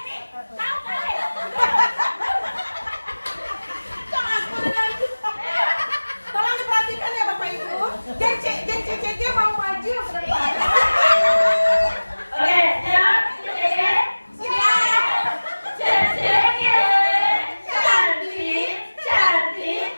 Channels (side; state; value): both; inverted; correlation -1.00